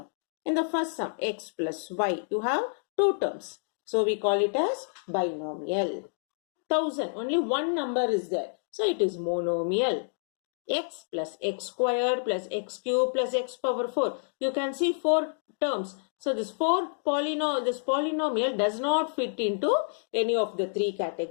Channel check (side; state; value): right; silent; digital silence